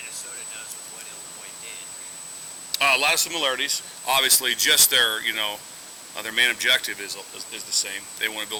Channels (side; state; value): both; identical; correlation 1.00